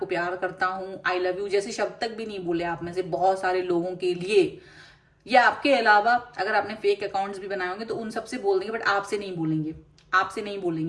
प्यार करता हूं, आई लव यू जैसे शब्द तक भी नहीं बोले आप में से बहुत सारे लोगों के लिए, या आपके अलावा अगर आपने फेक अकाउंट्स भी बनाए होंगे तो उन सबसे बोल देंगे, बट आपसे नहीं बोलेंगे, आपसे नहीं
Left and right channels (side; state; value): both; identical; correlation 1.00